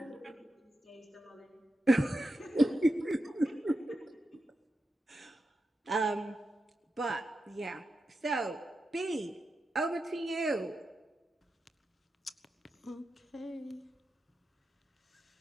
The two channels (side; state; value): both; normal; correlation 0.89